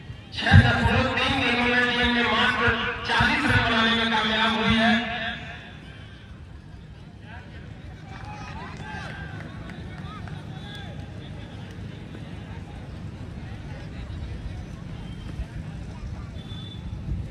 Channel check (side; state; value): both; identical; correlation 1.00